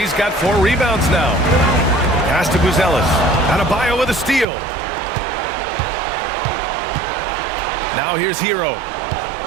got 4 rebounds now. Pass to Buzelis. Adebayo with a steal. Now here's Hero.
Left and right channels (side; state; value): left; drops out; at 4.5 s